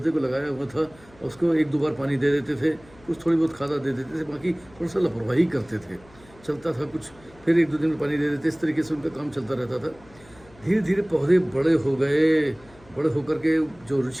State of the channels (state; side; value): noise; left; hum, 25 dB below the sound